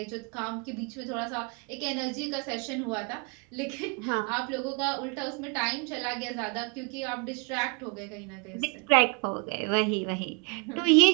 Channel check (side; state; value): left; quieter; 34.5 dB